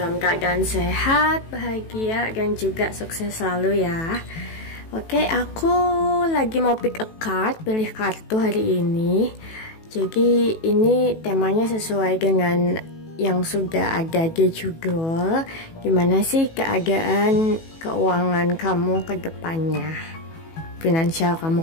keadaan sehat, bahagia, dan juga sukses selalu ya. Oke, aku lagi mau pick a card, pilih kartu hari ini. Jadi ini temanya sesuai dengan yang sudah ada di judul. Gimana sih keadaan keuangan kamu ke depannya? Finansial kamu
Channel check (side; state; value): right; late; 18 ms